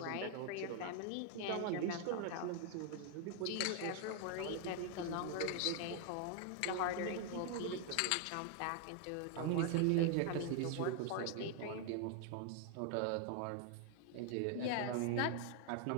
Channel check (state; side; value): different; both; correlation 0.00